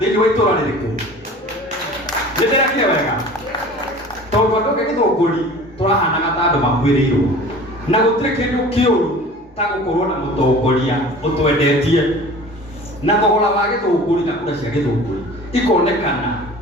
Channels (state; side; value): normal; both; correlation 0.42